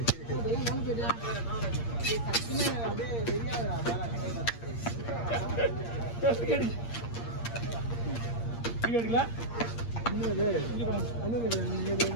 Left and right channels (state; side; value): late; right; 8.6 ms